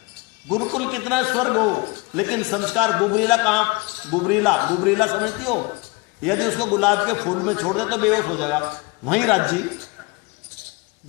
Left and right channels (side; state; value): right; quieter; 26.8 dB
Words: गुरुकुल कितना स्वर्ग हो, लेकिन संस्कार गुबरीला कहाँ? गुबरीला समझती हो? यदि उसको गुलाब के फूल में छोड़ दे तो बेहोश हो जाएगा, वहीं राज्य